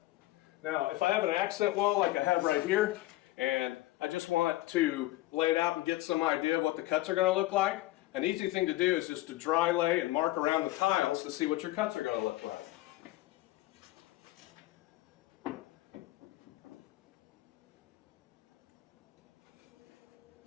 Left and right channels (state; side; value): quieter; right; 17.2 dB